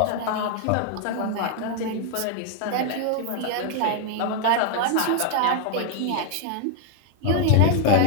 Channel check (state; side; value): different; both; correlation 0.00